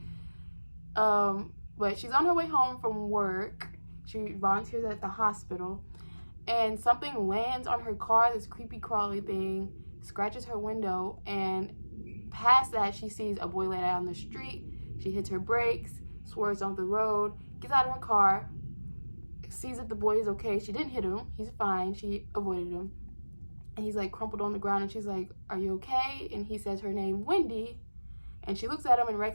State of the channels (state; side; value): inverted; both; correlation -1.00